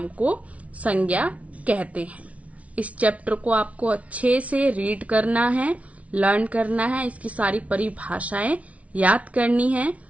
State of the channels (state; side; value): late; left; 0.066 ms